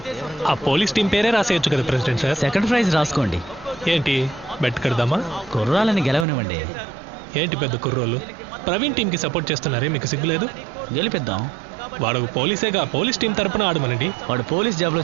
ఆ పోలీస్ టీం పేరే రాసేయచ్చు కదా ప్రెసిడెంట్ సార్. సెకండ్ ప్రైజ్ రాసుకోండి. ఏంటి బెట్ కడదామా? కుర్రాలని గెలవనివ్వండి. ఏంటి పెద్ద కుర్రోళ్ళు ప్రవీణ్ టీంకి సపోర్ట్ చేస్తున్నారే, మీకు సిగ్గులేదు? గెలిపిద్దాం. వాడు పోలీసేగా, పోలీస్ టీం తరపున ఆడమనండి. వాడు పోలీస్ జాబ్ లో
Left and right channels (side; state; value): left; drops out; at 6.2 s